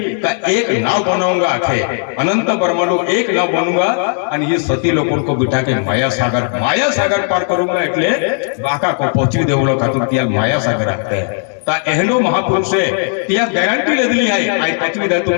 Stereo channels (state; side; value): silent; right; 61 dB below the other